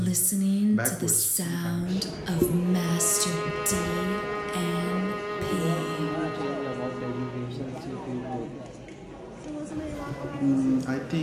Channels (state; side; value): identical; both; correlation 1.00